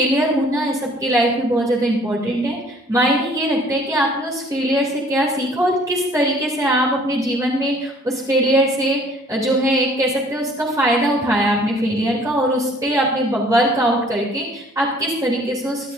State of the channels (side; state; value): both; normal; correlation 0.56